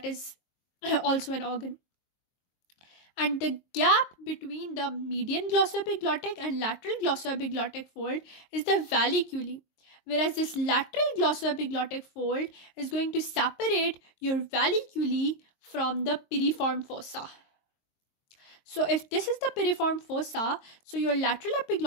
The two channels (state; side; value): late; right; 23 ms